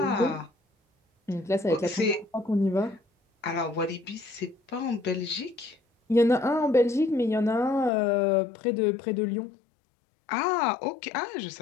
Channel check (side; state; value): right; drops out; at 7.9 s